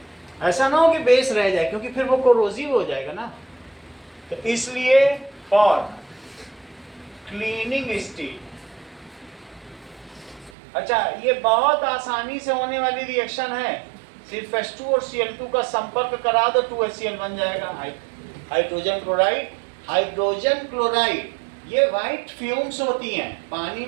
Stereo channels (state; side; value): drops out; left; at 10.6 s